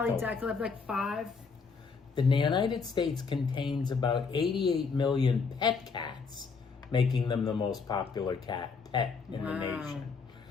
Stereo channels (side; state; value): right; quieter; 5.1 dB